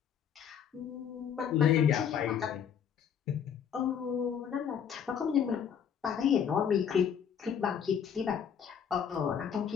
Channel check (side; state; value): right; quieter; 8.0 dB